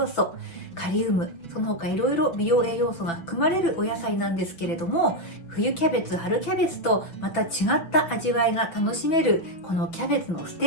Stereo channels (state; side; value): late; right; 6.0 ms